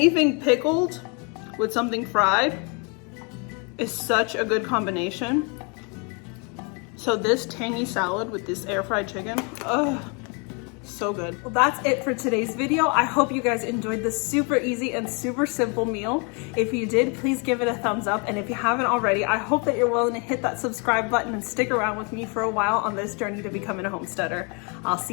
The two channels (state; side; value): quieter; right; 34.0 dB